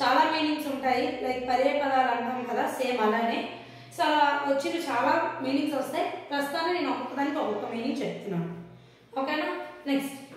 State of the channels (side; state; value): both; identical; correlation 1.00